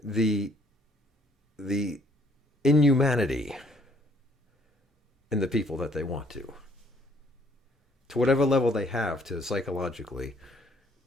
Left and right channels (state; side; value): normal; both; correlation 0.63